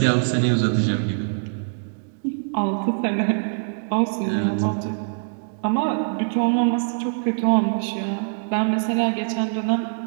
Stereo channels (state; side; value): silent; left; digital silence